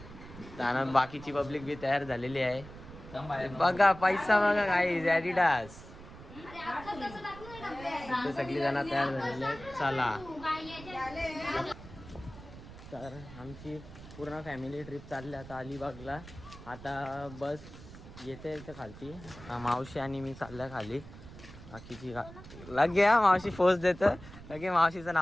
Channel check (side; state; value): right; noise; rumble, 16 dB below the sound